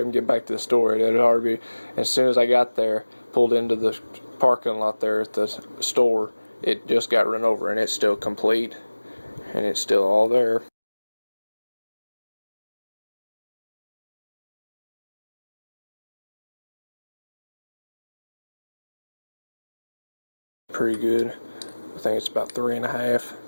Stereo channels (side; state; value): both; inverted; correlation -1.00